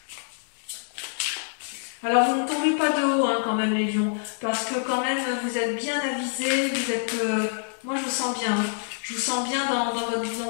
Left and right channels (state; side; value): silent; right; digital silence